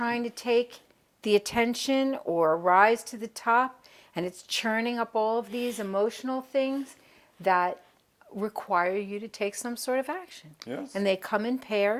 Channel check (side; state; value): both; identical; correlation 1.00